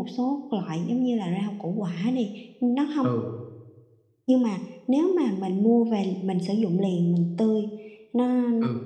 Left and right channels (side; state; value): both; identical; correlation 1.00